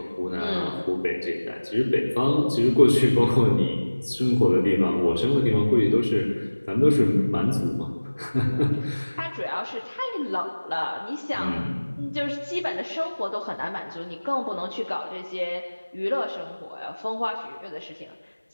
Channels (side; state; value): both; inverted; correlation -1.00